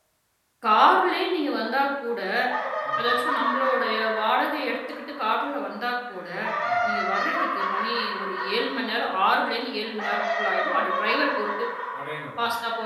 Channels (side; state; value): both; identical; correlation 1.00